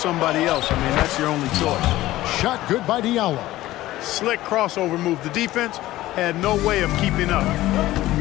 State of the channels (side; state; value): right; quieter; 16.1 dB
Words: else. I mean, that's your only choice. Shot good by Diallo. Slick crossover move. The defense had no way of keeping up.